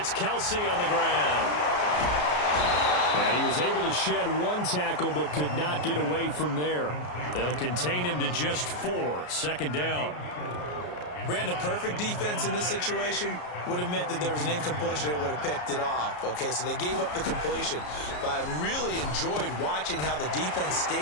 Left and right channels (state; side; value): late; right; 33 ms